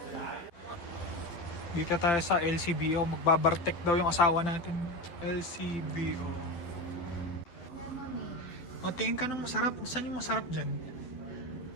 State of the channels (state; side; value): late; right; 12 ms